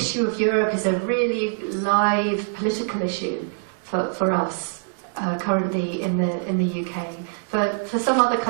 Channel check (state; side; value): silent; left; digital silence